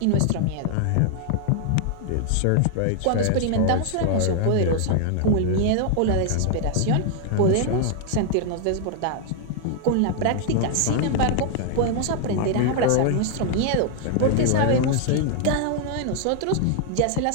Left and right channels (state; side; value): different; both; correlation 0.00